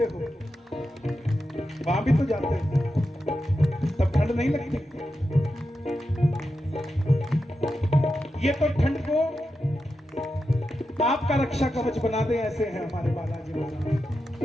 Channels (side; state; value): both; normal; correlation 0.89